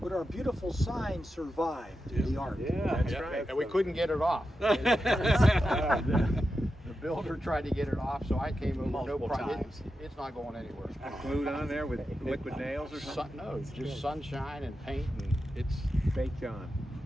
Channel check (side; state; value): both; normal; correlation 0.90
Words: our beautiful sign survived the art. Yeah, that's right. And we couldn't get it off. The builder tried to get it off, so I came over. Multiple no problem. times. It's not going anywhere. Glued on there with liquid nails or something? No, just sunshine and paint, and it's Baked on.